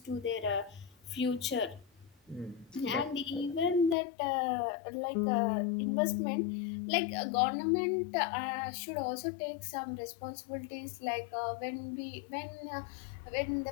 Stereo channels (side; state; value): right; drops out; at 4.0 s